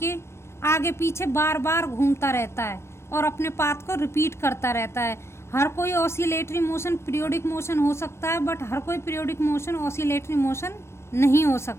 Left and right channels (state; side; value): late; right; 0.13 ms